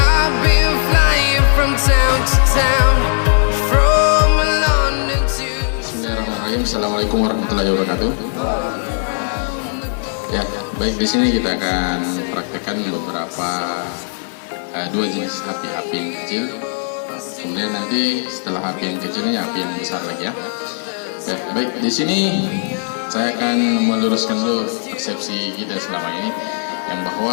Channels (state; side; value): silent; right; 67 dB below the other